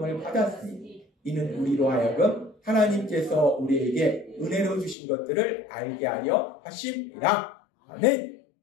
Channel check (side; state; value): right; drops out; at 5.0 s